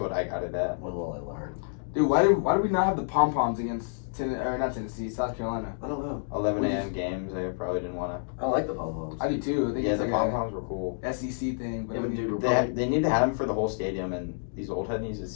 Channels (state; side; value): silent; right; digital silence